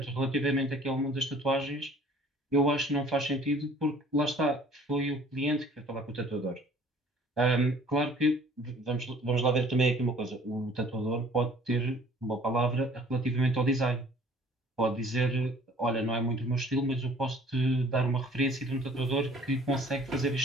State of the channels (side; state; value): both; normal; correlation 0.53